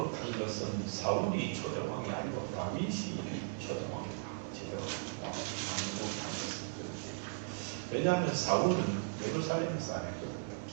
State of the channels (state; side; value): silent; left; digital silence